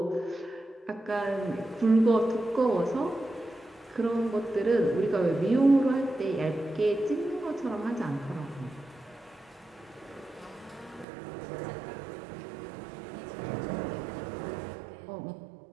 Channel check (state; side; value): drops out; left; at 11.1 s